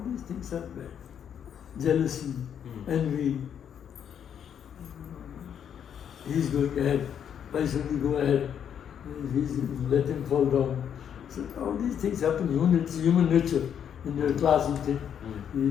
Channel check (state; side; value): quieter; right; 8.6 dB